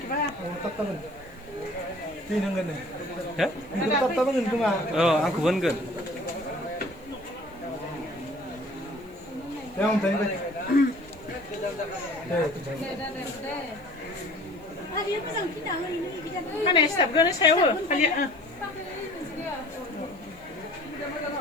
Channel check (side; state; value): right; noise; hiss, 29 dB below the sound